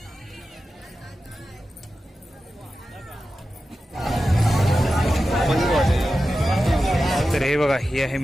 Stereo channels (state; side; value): normal; both; correlation 0.92